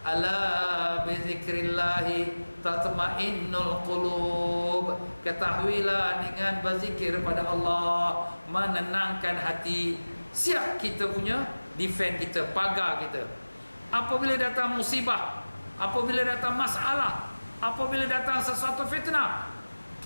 ala bizikrillahi tatma'innul qulub. Ketahuilah dengan berzikir pada Allah menenangkan hati. Siap kita punya defend kita, pagar kita. Apabila datang musibah, apabila datang masalah, apabila datang sesuatu fitnah,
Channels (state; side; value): inverted; both; correlation -1.00